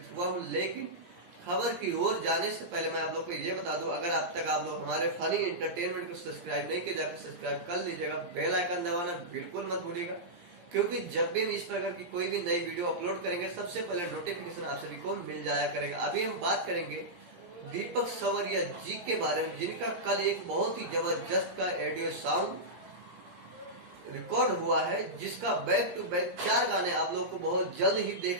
हुआ हूँ। लेकिन खबर की ओर जाने से पहले मैं आप लोग को ये बता दूं, अगर अब तक आप लोग हमारे फनी एंटरटेनमेंट को सब्सक्राइब नहीं किया, जाकर सब्सक्राइब कर लीजिएगा। बेल आइकन दबाना बिल्कुल मत भूलिएगा, क्योंकि जब भी हम इस प्रकार की कोई भी नई वीडियो अपलोड करेंगे, सबसे पहले नोटिफिकेशन आप सभी को मिल जाया करेगा। अभी हम बात करेंगे दीपक सवरिया जी के बारे में, जिनका कल एक बहुत ही जबरदस्त का ऑडियो सॉन्ग रिकॉर्ड हुआ है, जिसका बैक टू बैक 4 गाने आप लोग को बहुत जल्द ही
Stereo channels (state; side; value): late; left; 17 ms